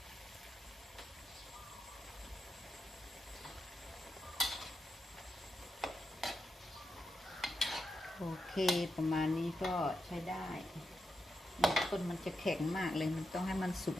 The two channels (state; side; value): normal; both; correlation 0.87